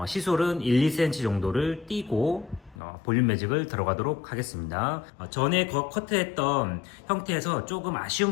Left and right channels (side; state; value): right; drops out; at 2.8 s